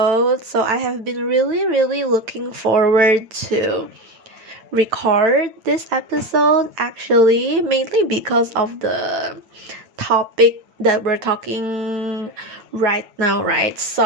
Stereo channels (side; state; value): left; late; 9.0 ms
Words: So, I have been really looking forward to record this episode actually, mainly because of the topic that we're talking right now, right?